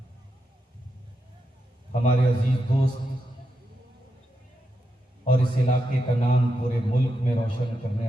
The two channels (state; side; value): normal; both; correlation 0.85